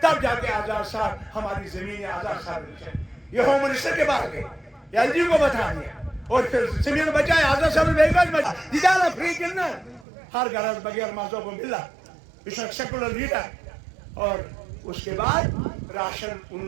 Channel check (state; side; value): drops out; left; at 10.1 s